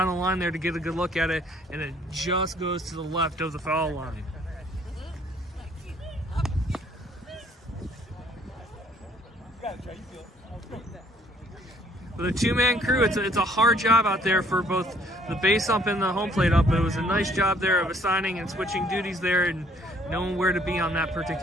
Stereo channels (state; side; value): normal; both; correlation 0.62